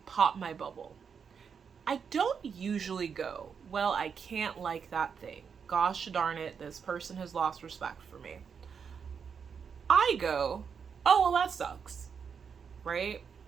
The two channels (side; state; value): left; quieter; 6.5 dB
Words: pop my bubble, I don't usually go, well, I can't like that thing. Gosh darn it, this person has lost respect for me. I go, oh, well, that sucks, right?